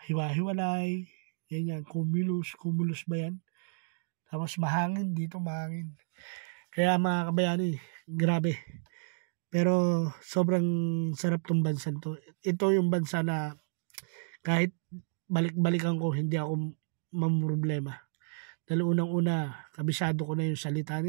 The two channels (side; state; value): left; silent; digital silence